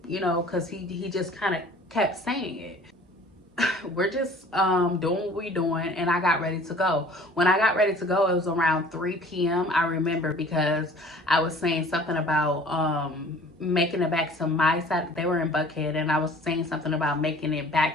you know, because he just kind of kept saying it. We're just doing what we're doing, and I got ready to go. When I got ready to go, it was around 3 p.m. I remember because I was saying something about making it back to my side. They were in Buckhead, and I was saying something about making it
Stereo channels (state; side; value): normal; both; correlation 0.49